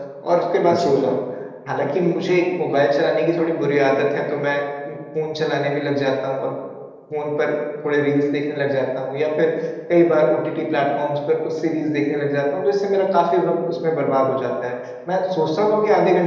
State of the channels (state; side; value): identical; both; correlation 1.00